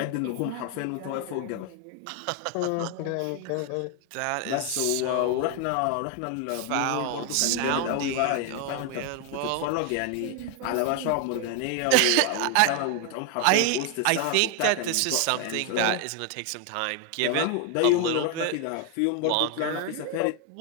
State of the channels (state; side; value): different; both; correlation 0.01